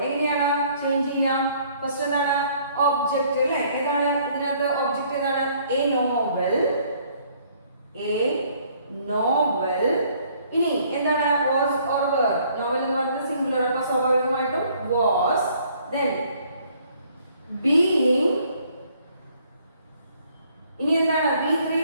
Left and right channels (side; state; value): both; inverted; correlation -0.62